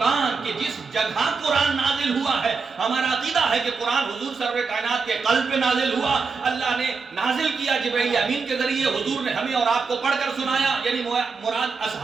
کہ جس جگہ قرآن نازل ہوا ہے. ہمارا عقیدہ ہے کہ قرآن حضور سرور کائنات کے قلب پہ نازل ہوا. اللہ نے نازل کیا جبرائیل امین کے ذریعے، حضور نے ہمیں اور آپ کو پڑھ کر سنایا، یعنی مراد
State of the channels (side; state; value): left; quieter; 4.8 dB